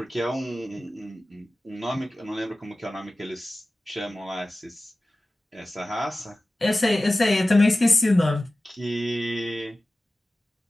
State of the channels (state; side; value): normal; both; correlation 0.96